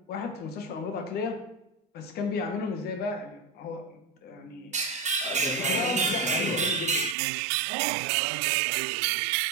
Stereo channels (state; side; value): drops out; left; at 7.2 s